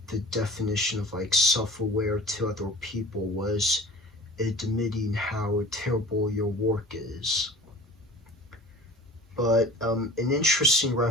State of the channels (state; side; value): normal; both; correlation 0.40